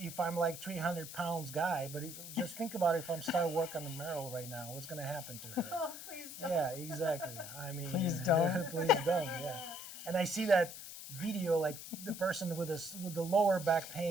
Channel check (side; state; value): left; noise; hiss, 11 dB below the sound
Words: if I'm like 300 pounds guy, but just think about it. If I'm start work on the Merrill right now, what's gonna happen to her? Oh, please don't. Yeah, exactly. I mean, Please don't. please don't. Yeah. And I see that video, like the person with the lower back